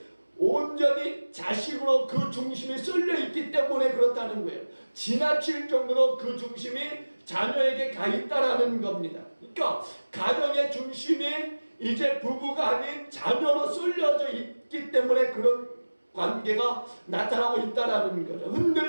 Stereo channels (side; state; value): both; inverted; correlation -1.00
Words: 온전히 자식으로 그 중심이 쏠려 있기 때문에 그렇다는 거예요. 지나칠 정도로 그 중심이 자녀에게 가 있다라는 겁니다. 그러니까 가정의 중심이 이제 부부가 아닌 자녀로 쏠려져 있기 때문에 그런 관계가 나타나고 있다라는 거죠.